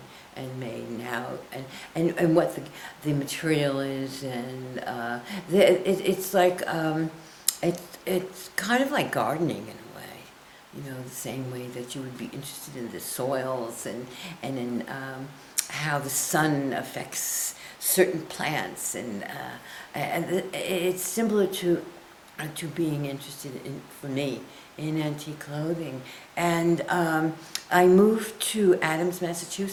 and made, and how and what the material is, and it's like it's kind of like gardening in a way, you know, the same way that you would be interested in the soils and in how the sun affects certain plants, and it's similar to being interested in, for me, in antique clothing. And I moved to Adams,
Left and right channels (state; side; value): identical; both; correlation 1.00